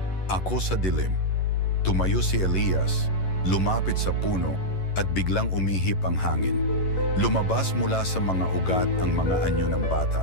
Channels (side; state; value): right; late; 11 ms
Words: ako sa dilim." Tumayo si Elias, lumapit sa puno at biglang umihip ang hangin. Lumabas mula sa mga ugat ang mga anyo ng